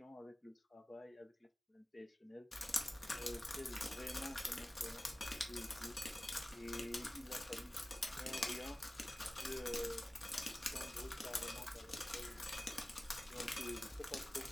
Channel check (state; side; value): normal; both; correlation 0.97